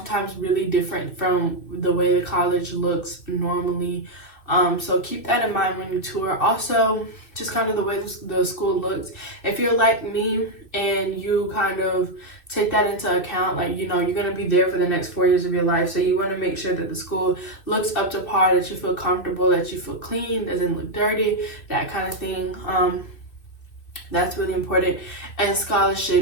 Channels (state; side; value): late; right; 2.6 ms